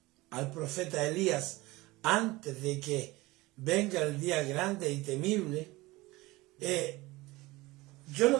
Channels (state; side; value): quieter; left; 20.6 dB